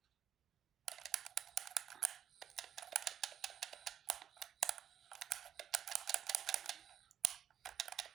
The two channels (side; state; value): left; quieter; 9.4 dB